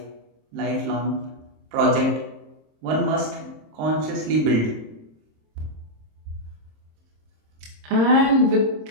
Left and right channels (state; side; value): late; left; 26 ms